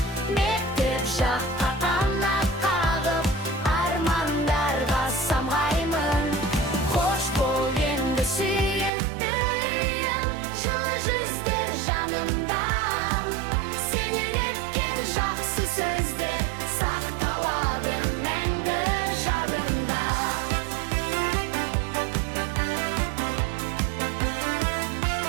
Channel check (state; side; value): drops out; left; at 8.9 s